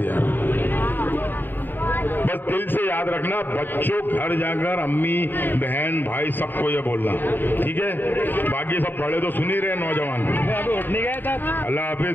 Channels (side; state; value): right; late; 0.093 ms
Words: बस दिल से याद रखना। बच्चों घर जाकर अम्मी बहन भाई सबको ये बोलना, ठीक है? बाकी सब बड़े तो सुन ही रहे, नौजवान। अल्लाह हाफिज,